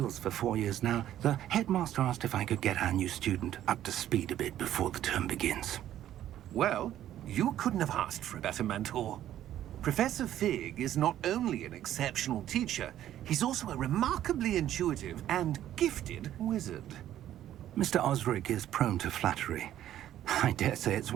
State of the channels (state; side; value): quieter; left; 12.0 dB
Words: for 4 years now, the headmaster asked if I could get our new student up to speed a bit before the term begins. Well, you couldn't have asked for a better mentor. Professor Fig is not only an exceptional teacher, he's also a remarkably intuitive and gifted wizard. Mr. Osric is prone to flattery. I dare say it's